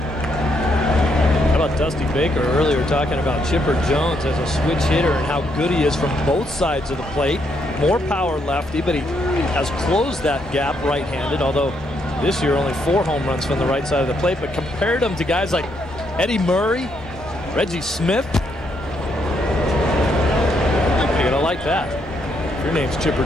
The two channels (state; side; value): normal; both; correlation 0.75